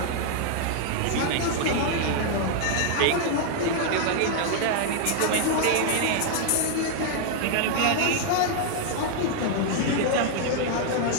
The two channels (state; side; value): different; both; correlation 0.00